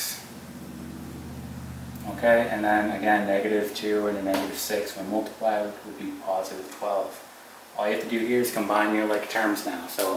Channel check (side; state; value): both; identical; correlation 1.00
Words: Okay, and then again, negative 2 and a negative 6 when multiplied would be positive 12. All you have to do here is combine your like terms now.